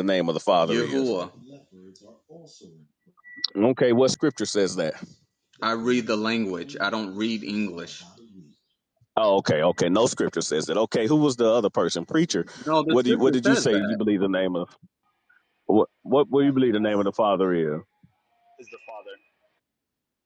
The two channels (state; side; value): identical; both; correlation 1.00